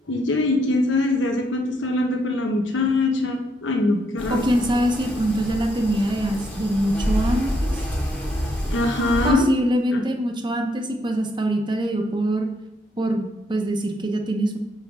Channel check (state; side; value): normal; both; correlation 0.74